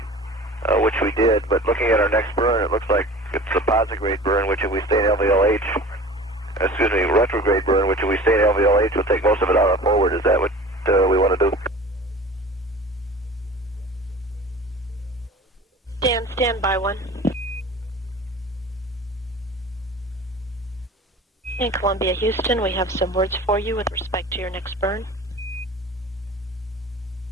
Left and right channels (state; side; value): normal; both; correlation 0.40